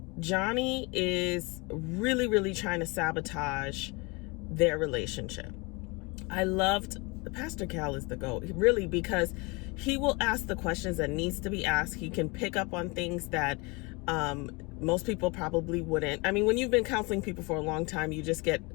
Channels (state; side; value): quieter; right; 27.6 dB